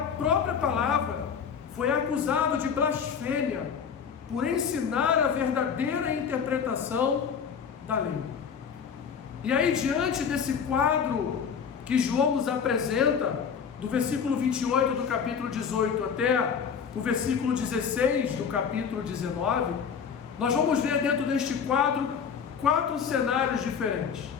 palavra, foi acusado de blasfêmia por ensinar a verdadeira interpretação da lei. E aí, diante desse quadro que João nos apresenta, do versículo 28 do capítulo 18 até o versículo 16 do capítulo 19, nós vamos ver dentro deste quadro 4 cenários diferentes.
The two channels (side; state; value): right; quieter; 6.9 dB